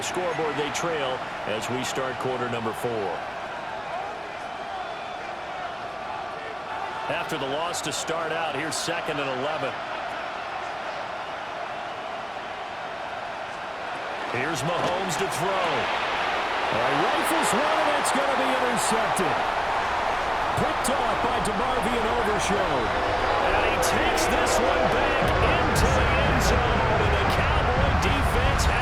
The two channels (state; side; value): identical; both; correlation 1.00